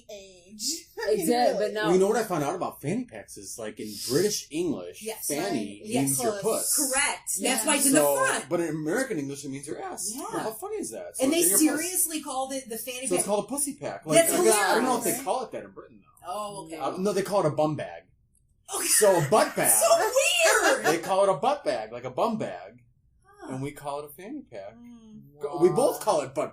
age. Exactly, but now... Well, you know what I found out about fanny packs is, like, in British English, fanny means your puss. Correct. That's why it's in the front. But in American English, it means your ass. Yeah. Well, how funny is that? So and they seriously called it the fanny pack. So it's called a pussy pack. Like, That's hilarious. I don't know if they call it that in Britain, though. Oh, okay. No, they call it a bum bag. Okay. So a butt bag. So weird! They call it a butt bag, like a bum bag. And we call it a fanny pack. Wow. We both call it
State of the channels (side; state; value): both; identical; correlation 1.00